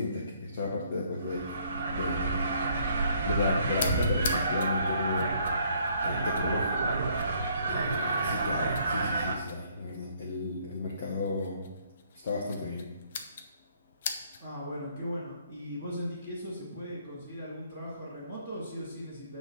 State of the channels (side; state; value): both; inverted; correlation -0.65